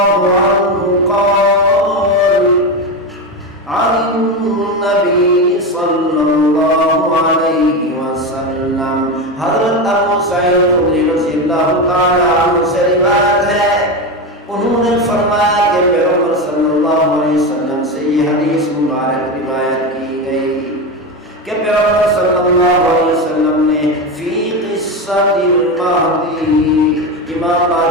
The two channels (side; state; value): both; normal; correlation 0.17